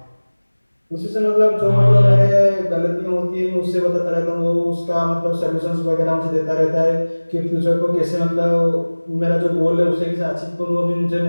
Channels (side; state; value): both; inverted; correlation -1.00